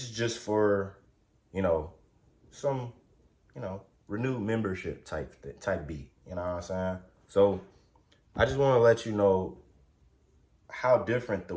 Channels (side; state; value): both; identical; correlation 1.00